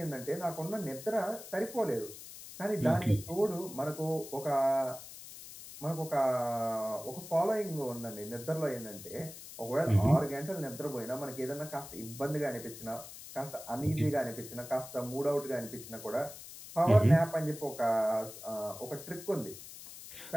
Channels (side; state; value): left; noise; hiss, 14 dB below the sound